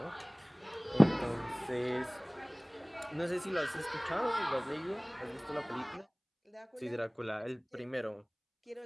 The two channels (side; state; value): both; identical; correlation 1.00